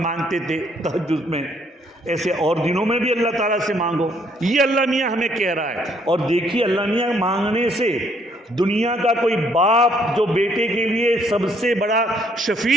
تھے تہجد میں، ایسے اور دنوں میں بھی اللہ تعالیٰ سے مانگو، یہ اللہ میاں ہمیں کہہ رہا ہے۔ اور دیکھیے اللہ میاں مانگنے سے دنیا کا کوئی باپ جو بیٹے کے لیے سب سے بڑا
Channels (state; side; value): normal; both; correlation 0.67